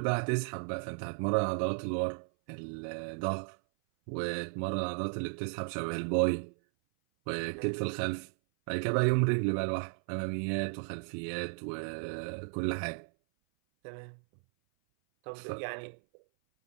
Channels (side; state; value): left; silent; 55 dB below the other